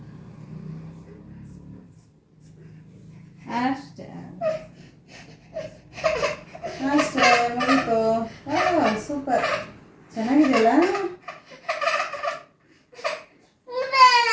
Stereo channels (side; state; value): both; identical; correlation 1.00